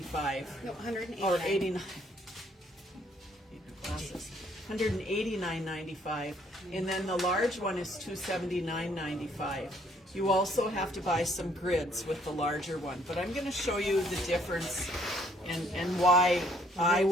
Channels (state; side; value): normal; both; correlation 0.65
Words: No, 189. Or 89. Glasses. $189.95. And then the large one is $279.95. You also have to buy some grids with the larger one. But I'm going to show you the difference and why I